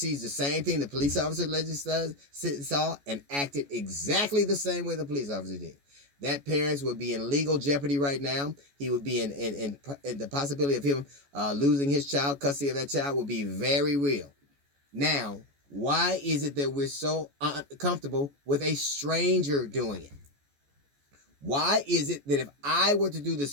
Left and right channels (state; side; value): late; left; 14 ms